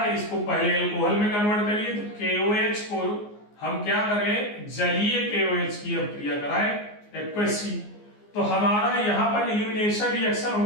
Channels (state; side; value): late; right; 14 ms